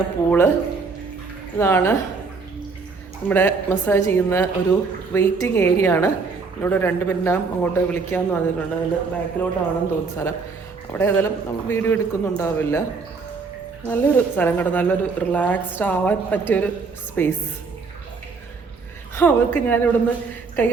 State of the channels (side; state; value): left; quieter; 4.6 dB